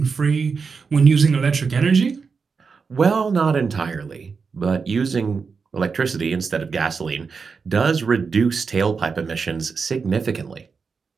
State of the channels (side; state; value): left; quieter; 5.2 dB